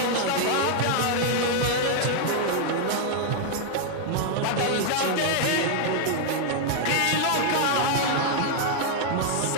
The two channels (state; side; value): different; both; correlation 0.00